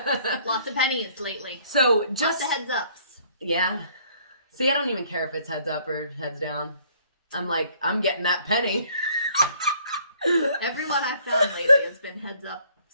Lots of pennies lately. So just lots of heads ups. Yeah. See, I don't even care if it's heads up or heads down. I'm like, I'm getting that penny. Everyone I've found lately has been heads up.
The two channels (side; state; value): both; inverted; correlation -0.60